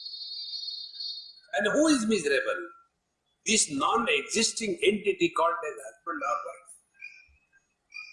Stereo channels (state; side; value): identical; both; correlation 1.00